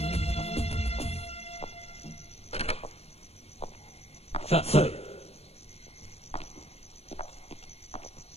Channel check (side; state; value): right; late; 0.30 ms